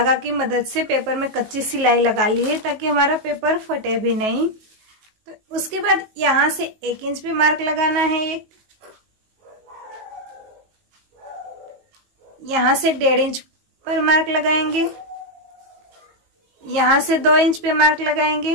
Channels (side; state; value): left; late; 19 ms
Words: की मदद से पेपर में कच्ची सिलाई लगा ली है ताकि हमारा पेपर फटे भी नहीं। तो उसके बाद यहां से 1 इंच पे मार्क लगाना है। यहां से 1.5 इंच पर मार्क लगाएंगे। यहां से 2 इंच पे मार्क